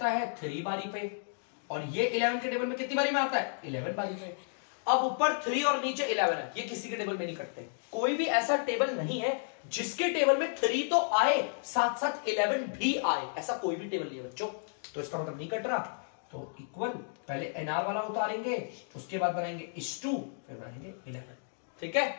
है 3 बारी पे और ये 11 के टेबल में कितनी बारी में आता है, 11 बारी पे। अब ऊपर 3 और नीचे 11 है, ये किसी के टेबल में नहीं कटते। कोई भी ऐसा टेबल नहीं है जिसके टेबल में 3 तो आए साथ साथ 11 भी आए, ऐसा कोई भी टेबल नहीं है बच्चों। तो इसका मतलब नहीं कट रहा। तो इक्वल पहले एनआर वाला उतारेंगे, उसके बाद बनाएंगे इस2, फिर बनाएंगे 11। ठीक है,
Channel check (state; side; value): silent; right; digital silence